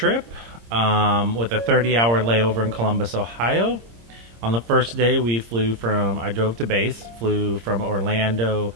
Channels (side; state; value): left; late; 26 ms